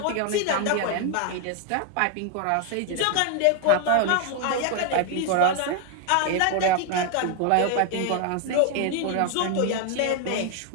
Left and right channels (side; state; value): both; different; correlation 0.00